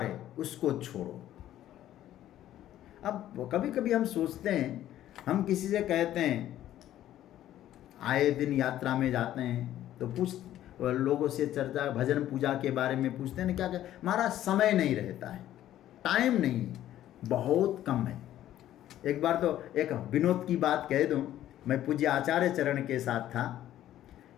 है उसको छोड़ो। अब कभी कभी हम सोचते हैं, हम किसी से कहते हैं, आए दिन यात्रा में जाते हैं तो लोगों से चर्चा, भजन पूजा के बारे में पूछते हैं, क्या हमारा समय नहीं रहता है, टाइम नहीं, बहुत कम है। एक बार तो एक विनोद की बात कह दूं, मैं पूज्य आचार्य चरण के साथ था,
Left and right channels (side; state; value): right; quieter; 12.7 dB